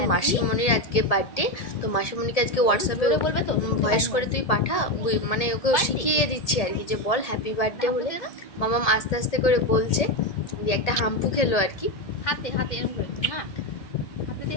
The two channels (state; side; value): late; right; 1.8 ms